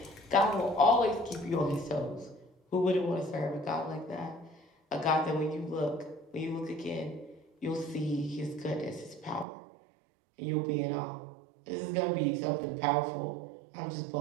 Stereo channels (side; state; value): left; drops out; at 9.5 s